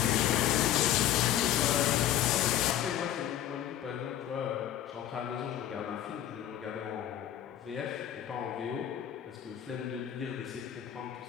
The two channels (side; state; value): right; quieter; 11.3 dB